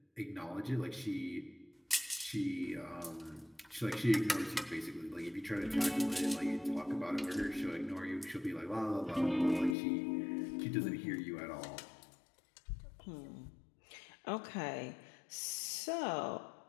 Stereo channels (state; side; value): drops out; right; at 9.8 s